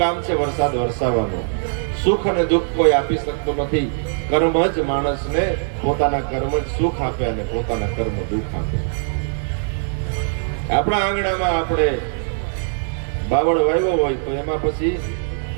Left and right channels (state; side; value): silent; left; 65 dB below the other